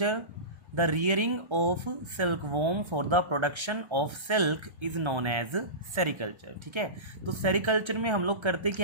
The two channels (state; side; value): late; left; 1.3 ms